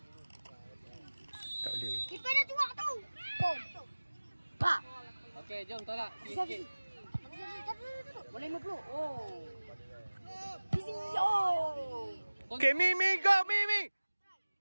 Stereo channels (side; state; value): both; inverted; correlation -1.00